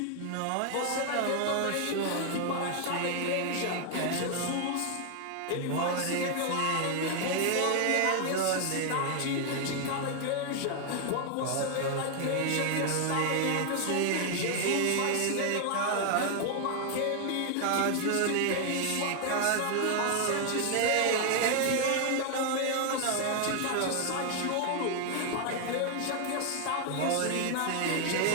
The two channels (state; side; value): different; both; correlation 0.00